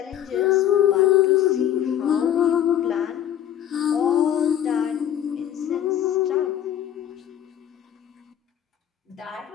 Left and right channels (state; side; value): quieter; right; 10.7 dB